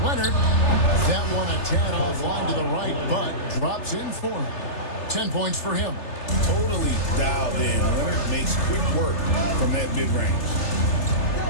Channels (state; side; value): late; right; 3.3 ms